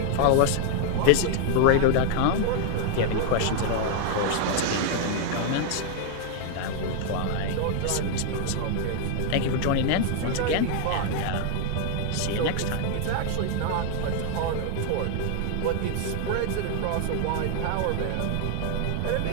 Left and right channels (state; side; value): different; both; correlation 0.00